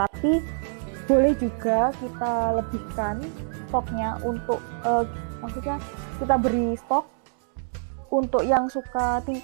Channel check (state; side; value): silent; left; digital silence